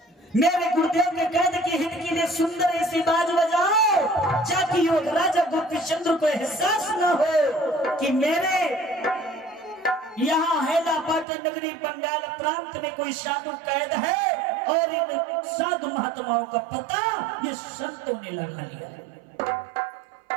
मेरे गुरुदेव के कैद के हित के लिए सुंदर ऐसी बाज बजाओ, ताकि युवक राजा गोपी चंद्र को एहसास न हो कि मेरे यहाँ हेलापाटन नगरी बंगाल प्रांत में कोई साधु कैद है और इन साधु महात्माओं का पता ये संतों ने लगा लिया है।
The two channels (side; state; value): left; drops out; at 11.2 s